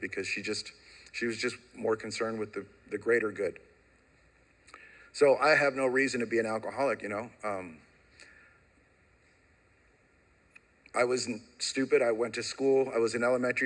she was just more concerned with the greater good. So I have no reason to be an alcoholic, I wasn't stupid. I went to school. I was in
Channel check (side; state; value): both; identical; correlation 1.00